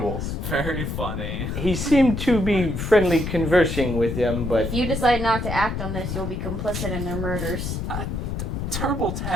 Very funny. He seemed to be friendly conversing with them, but If you decide not to act on this, you'll be complicit in their murders. Turble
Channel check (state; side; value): noise; left; rumble, 3 dB below the sound